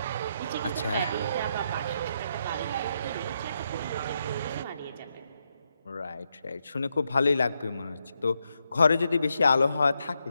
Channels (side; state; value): both; inverted; correlation -0.82